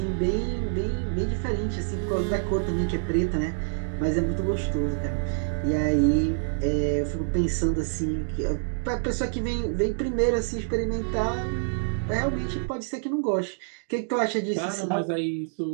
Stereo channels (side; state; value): left; silent; digital silence